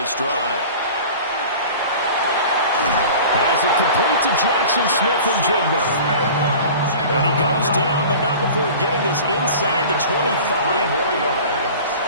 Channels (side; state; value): both; inverted; correlation -0.40